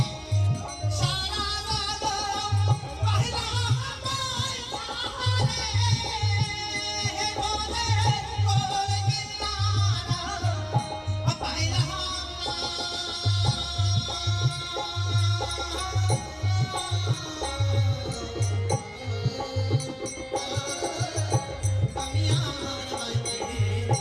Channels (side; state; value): both; identical; correlation 1.00